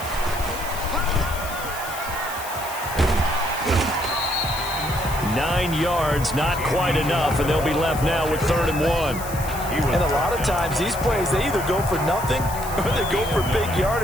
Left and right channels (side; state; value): left; noise; hiss, 12 dB below the sound